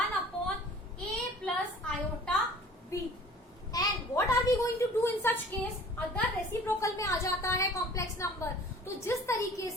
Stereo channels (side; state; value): both; normal; correlation 0.47